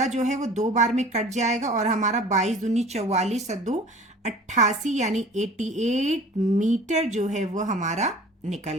जो है वो 2 बार में कट जाएगा और हमारा 22 दूनी 44 और 2 88 यानी 88 मीटर जो है वो हमारा निकल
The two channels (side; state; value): both; normal; correlation 0.44